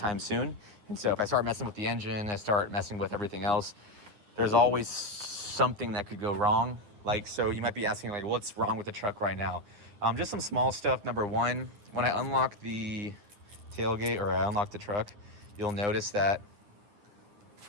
soon. And so if I start messing with the engine, I start messing with everything else, there's always something that could go wrong. Like, so you might be asking, like, what's wrong with the truck right now? Just some small stuff. Number one, when I unlock the tailgate or I unlock the truck, you'll notice that,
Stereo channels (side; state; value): left; late; 9.7 ms